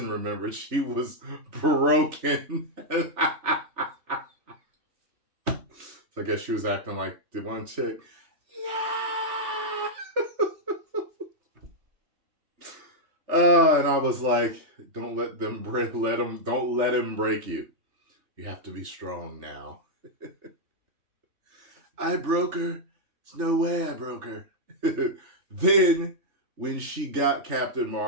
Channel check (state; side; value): late; left; 3.3 ms